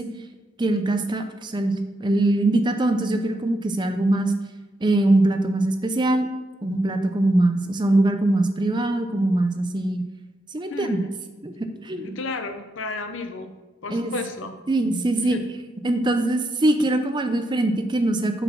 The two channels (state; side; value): normal; both; correlation 0.82